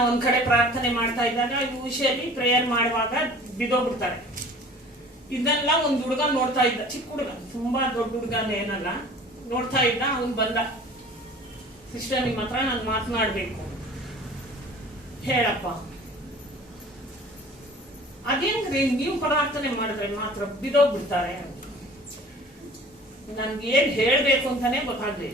ಒಂದ್ ಕಡೆ ಪ್ರಾರ್ಥನೆ ಮಾಡ್ತಾ ಇದ್ದಾಗ ಯೂಶಲಿ ಪ್ರೇಯರ್ ಮಾಡುವಾಗ ಬಿದೋಗ್ಬಿಡ್ತಾರೆ. ಇದನ್ನೆಲ್ಲ ಒಂದ್ ಹುಡುಗ ನೋಡ್ತಾ ಇದ್ದ, ಚಿಕ್ಕ ಹುಡುಗ, ತುಂಬಾ ದೊಡ್ಡ ಹುಡುಗನ ಏನಲ್ಲ, ನೋಡ್ತಾ ಇದ್ದ. ಅವನ್ ಬಂದ, ಸಿಸ್ಟರ್ ನಿಮ್ಮ ಹತ್ರ ನಾನು ಮಾತನಾಡ್ಬೇಕು. ಹೇಳಪ್ಪ. ಅದೇನ್ರಿ ನೀವು ಪ್ರಾರ್ಥನೆ ಮಾಡಿದ್ರೆ ಮಾತ್ರ ಬಿದೋಗ್ಬಿಡ್ತಾರೆ? ನನ್ಗೆ ಏನ್ ಹೇಳ್ಬೇಕು ಅಂತಾನೆ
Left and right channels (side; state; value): both; normal; correlation 0.45